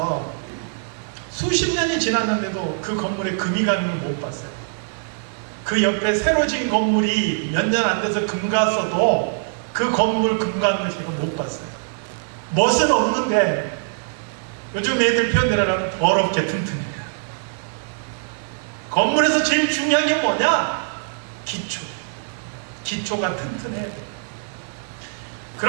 수십 년이 지났는데도 그 건물에 금이 가는 걸 못 봤어요. 그 옆에 새로 진 건물이 몇 년 안 돼서 금 갔어도 그 건물 금 가는 걸 제가 못 봤어요. 멋은 없는데 요즘 애들 표현대로 하면 더럽게 튼튼해요. 건물에서 제일 중요한 게 뭐냐? 기초가 튼튼해야 돼요.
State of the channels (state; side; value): silent; left; digital silence